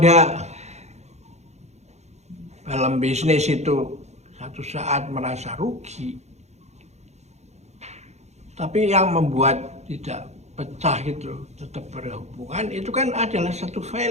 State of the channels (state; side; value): late; left; 0.32 ms